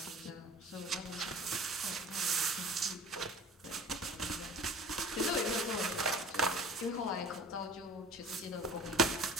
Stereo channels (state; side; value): normal; both; correlation 0.45